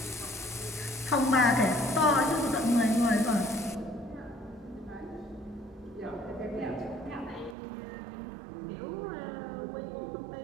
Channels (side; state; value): left; drops out; at 7.6 s